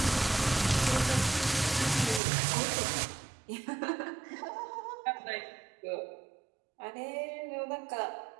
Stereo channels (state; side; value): drops out; left; at 2.2 s